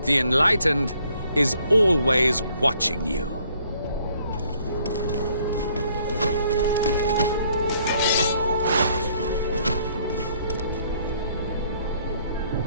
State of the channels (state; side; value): inverted; both; correlation -0.65